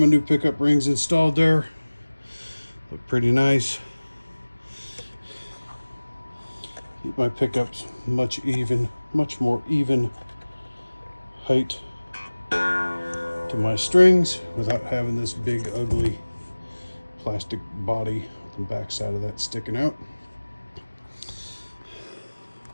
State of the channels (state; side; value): inverted; both; correlation -1.00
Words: new pickup rings installed there. Look pretty nice. Keep my pickups much more even height to my strings without having this big ugly plastic body on the back side of that sticking out.